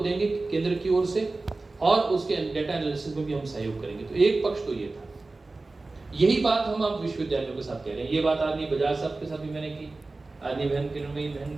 केंद्र की ओर से, और उसके डाटा एनालिसिस में भी हम सहयोग करेंगे। तो एक पक्ष तो ये था। यही बात हम अब विश्वविद्यालयों के साथ कह रहे हैं। ये बात आदमी बजाज साहब के साथ भी मैंने की, आदमी बहन किरणमयी बहन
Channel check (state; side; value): quieter; left; 3.4 dB